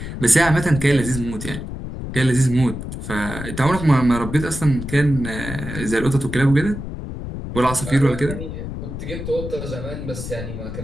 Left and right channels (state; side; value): noise; left; rumble, 7 dB below the sound